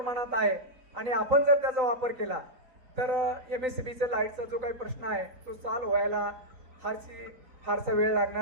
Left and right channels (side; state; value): left; late; 3.9 ms